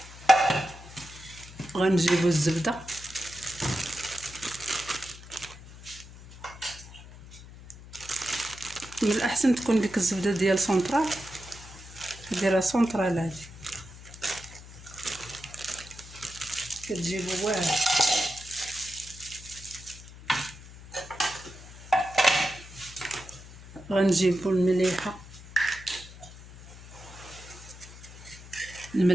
غنجيبو الزبده من الاحسن تكون ديك الزبده ديال سونطرال، ديرها سونطرال هادي كتجيبو واعر. غنجيبو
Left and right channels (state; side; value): noise; left; hum, 17 dB below the sound